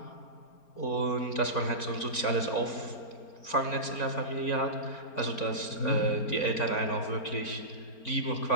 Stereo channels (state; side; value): late; right; 4.4 ms